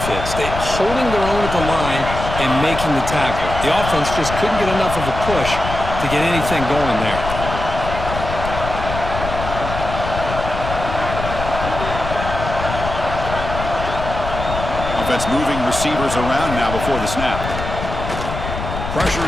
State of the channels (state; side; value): noise; left; rumble, 6 dB below the sound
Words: fits. They're holding their own at the line and making the tackle. The offense just couldn't get enough of a push to get anything going there. Offense moving receivers around now before the snap. Pressure